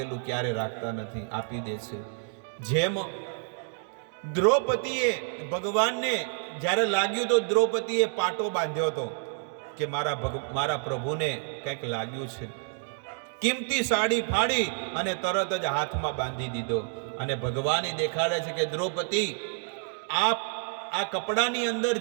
ક્યારે રાખતા નથી, આપી દે છે. જેમ દ્રૌપદીએ ભગવાનને જ્યારે લાગ્યું તો દ્રૌપદીએ પાટો બાંધ્યો હતો કે મારા પ્રભુને કંઈક લાગ્યું છે. કિંમતી સાડી ફાડી અને તરત જ હાથમાં બાંધી દીધો. અને ભગવાન દેખાડે છે કે દ્રૌપદી, આ કપડાની અંદર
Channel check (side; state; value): left; silent; 59 dB below the other